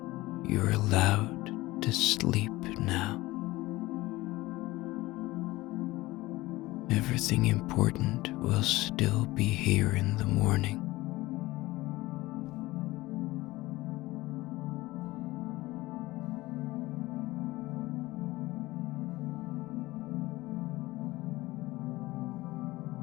You're allowed to sleep now. Everything important will still be here in the morning.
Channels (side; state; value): right; quieter; 19.2 dB